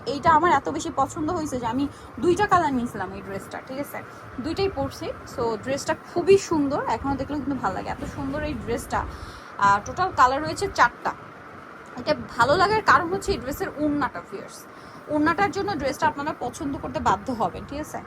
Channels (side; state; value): both; identical; correlation 1.00